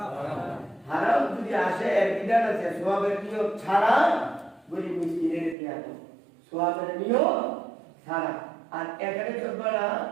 হারাম যদি আসে, এর বিধান আছে, সোয়াবের নিয়ত ছাড়া গরিব মিসকিনের দেয়া, সোয়াবের নিয়ত ছাড়া। আর এখানে যতটা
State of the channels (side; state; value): left; drops out; at 5.6 s